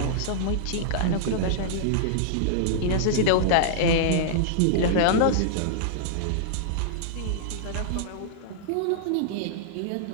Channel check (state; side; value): different; both; correlation -0.01